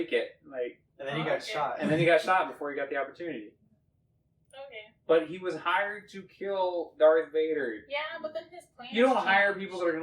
it. Like, And then he got Okay. shot. and then he got shot before he got the opportunity. Okay. But he was hired to kill Darth Vader. Yeah, but then his plan. You don't hire people that are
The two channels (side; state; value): both; identical; correlation 1.00